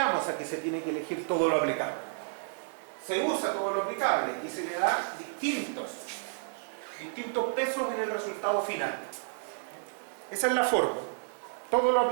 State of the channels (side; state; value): left; silent; 57 dB below the other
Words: a que se tiene que elegir todo lo aplicable? Se usa todo lo aplicable y se le da distintos pesos en el resultado final. Esa es la forma. Todo lo